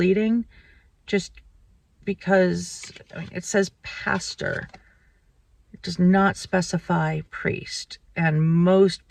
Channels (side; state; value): both; identical; correlation 1.00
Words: just because it says pastor. It does not specify priest, and most